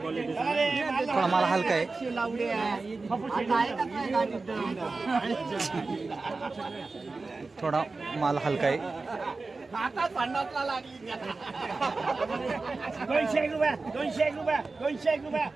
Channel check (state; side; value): quieter; left; 3.8 dB